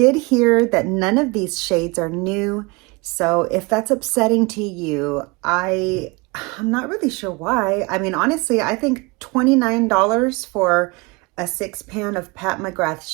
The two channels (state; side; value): quieter; left; 26.4 dB